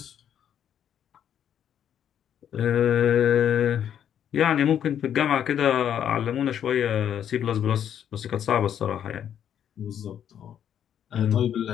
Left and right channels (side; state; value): right; quieter; 9.4 dB